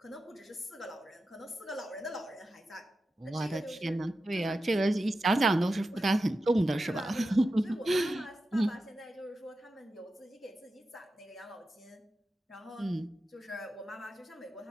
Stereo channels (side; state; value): both; normal; correlation 0.91